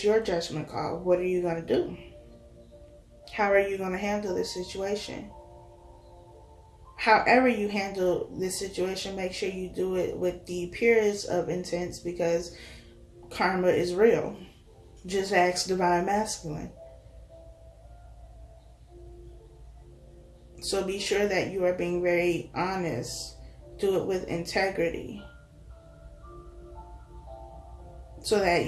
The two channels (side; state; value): both; identical; correlation 1.00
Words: your judgment call. What are you going to do? How are you going to handle this situation? However you handle this situation, make sure you do it with the purest of intents, because karma is real. Just ask Divine Masculine. So be sure that you are being very honest. Do it with integrity, so that